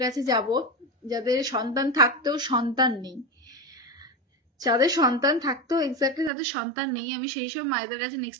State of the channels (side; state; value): left; drops out; at 6.3 s